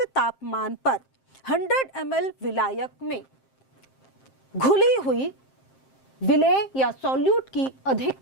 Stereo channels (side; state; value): right; late; 7.6 ms